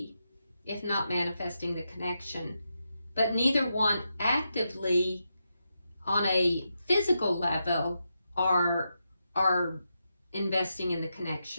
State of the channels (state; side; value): inverted; both; correlation -0.86